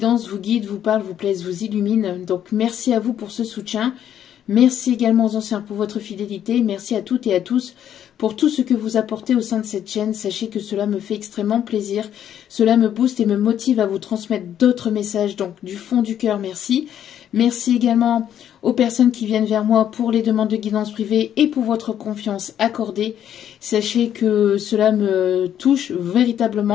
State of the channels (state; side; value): quieter; right; 10.1 dB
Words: vous guident, vous parlent, vous plaisent, vous illuminent. Donc merci à vous pour ce soutien. Merci également aux anciens pour votre fidélité. Merci à toutes et à tous pour tout ce que vous apportez au sein de cette chaîne. Sachez que cela me fait extrêmement plaisir. Cela me booste et me motive à vous transmettre d'autres messages. Donc du fond du cœur, merci. Merci également aux personnes qui viennent vers moi pour les demandes de guidance privée et pour votre confiance accordée. Sachez que cela me touche